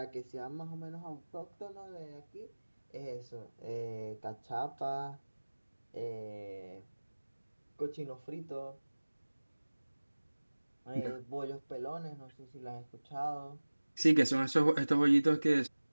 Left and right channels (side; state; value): both; inverted; correlation -1.00